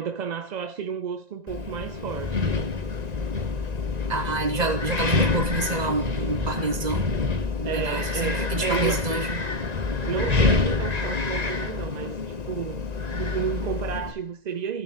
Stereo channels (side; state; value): left; late; 2.0 ms